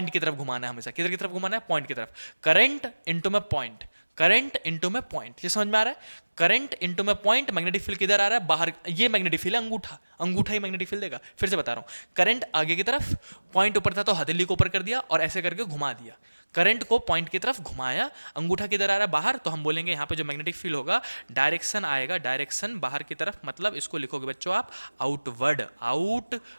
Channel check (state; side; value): inverted; both; correlation -1.00